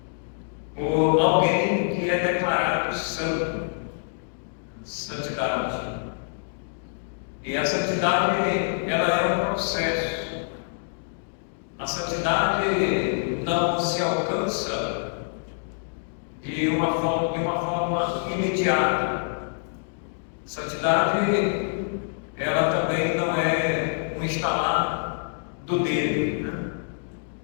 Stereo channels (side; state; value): right; silent; digital silence